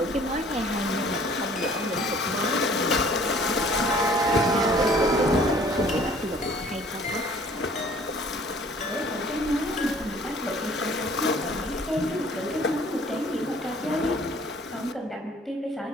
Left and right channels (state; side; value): normal; both; correlation 0.54